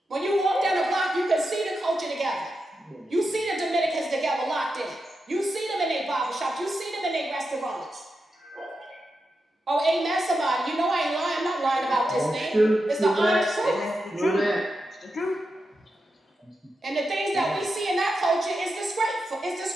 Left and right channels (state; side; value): normal; both; correlation 0.88